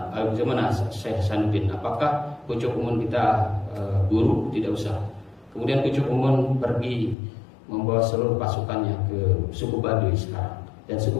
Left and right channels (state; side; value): drops out; right; at 7.2 s